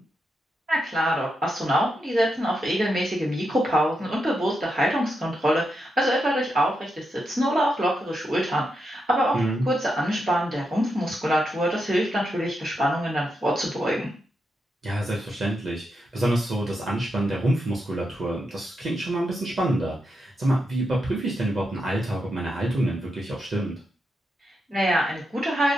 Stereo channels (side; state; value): both; normal; correlation 0.85